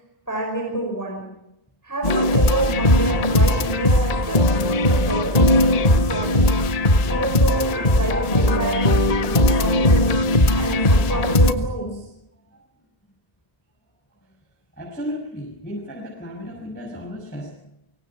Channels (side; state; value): right; late; 1.7 ms